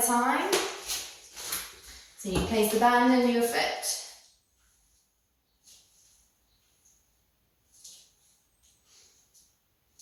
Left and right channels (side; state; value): both; identical; correlation 1.00